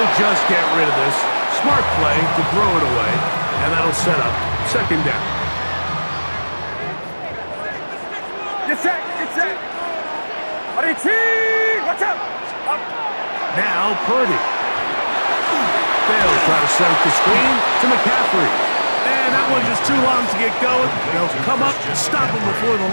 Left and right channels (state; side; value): inverted; both; correlation -1.00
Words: just get rid of this. Smart play to throw it away. And that'll set up 2nd down. Get set. Watch out. Up. Now Purdy. They'll try to set up the screen to McCaffrey. And that one just too long to get going. They'll come up and stop him before the